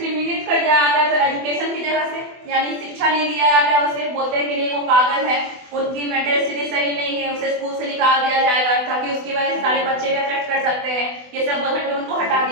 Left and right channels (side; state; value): left; late; 24 ms